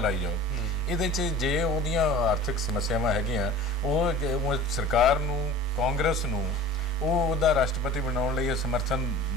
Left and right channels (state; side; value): normal; both; correlation 0.40